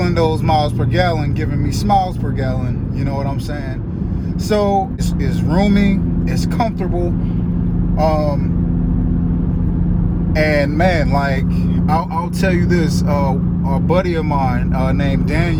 those miles per gallon, giving me smiles per gallon. You know what I'm saying? So it's roomy, it's comfortable, and man, like I'll tell you this. A buddy of mine named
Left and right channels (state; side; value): identical; both; correlation 1.00